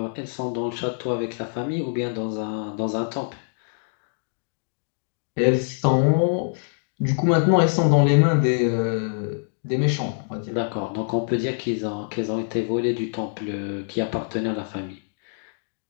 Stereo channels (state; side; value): silent; right; digital silence